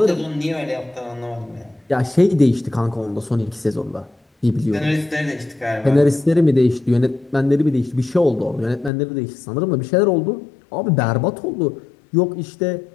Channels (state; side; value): drops out; right; at 8.9 s